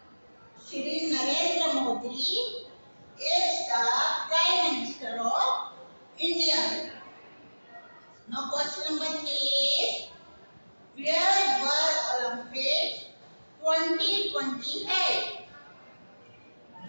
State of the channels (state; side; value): inverted; both; correlation -1.00